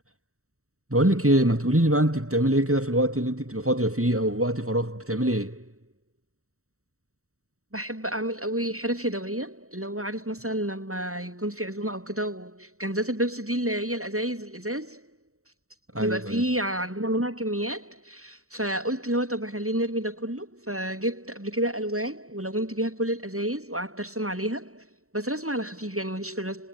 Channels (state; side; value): late; left; 0.64 ms